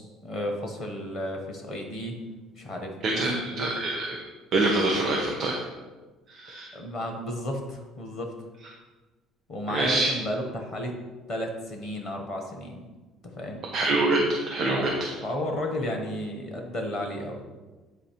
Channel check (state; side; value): normal; both; correlation 0.59